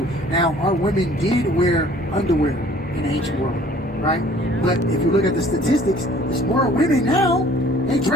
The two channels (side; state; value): both; normal; correlation 0.54